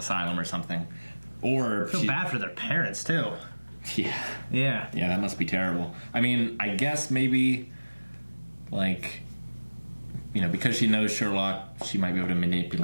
or something. Or... I feel bad for their parents, too. Yeah. Yeah. Yeah, that must be terrible. I mean, I guess maybe, because she knows Sherlock, she might be able to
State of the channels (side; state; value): both; inverted; correlation -1.00